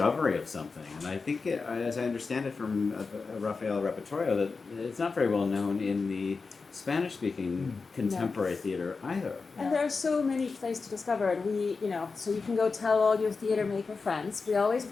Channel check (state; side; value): quieter; right; 4.5 dB